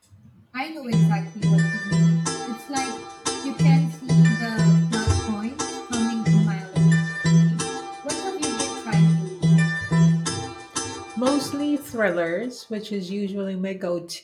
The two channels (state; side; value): identical; both; correlation 1.00